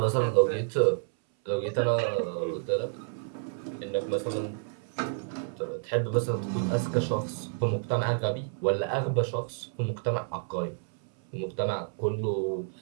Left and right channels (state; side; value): silent; left; 58 dB below the other